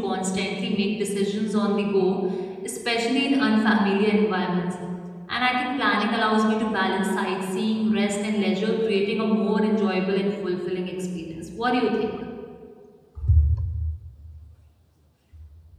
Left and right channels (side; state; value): both; identical; correlation 1.00